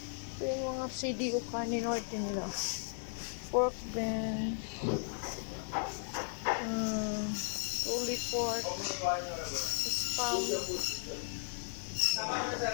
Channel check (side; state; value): right; silent; 54 dB below the other